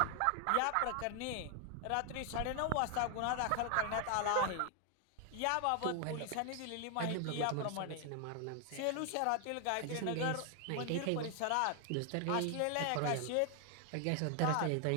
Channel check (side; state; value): both; different; correlation 0.00